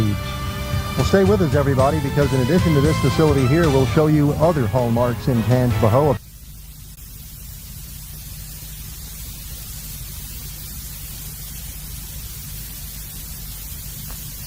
Well, stay with us, everybody, because in addition to this facility here, we'll show you other hallmarks in Tangipahoa.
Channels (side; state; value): both; identical; correlation 1.00